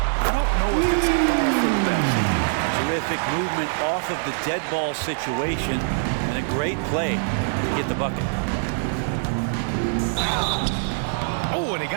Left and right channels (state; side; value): silent; left; 63 dB below the other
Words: don't know if it's all for the best. Terrific movement off of the dead ball situation and a great play to get the bucket. Oh, and he